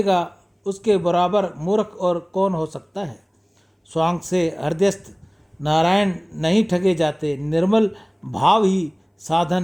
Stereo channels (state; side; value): identical; both; correlation 1.00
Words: उसके बराबर मूर्ख और कौन हो सकता है। स्वांग से हृदयस्थ नारायण नहीं ठगे जाते, निर्मल भाव ही साधन